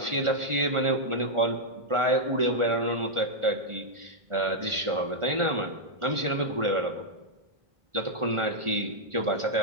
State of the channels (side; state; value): left; late; 1.4 ms